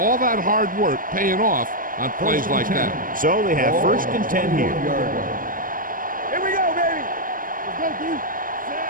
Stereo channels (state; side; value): late; left; 0.40 ms